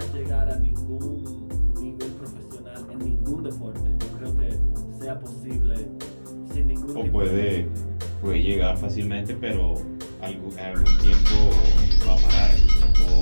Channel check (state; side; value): inverted; both; correlation -1.00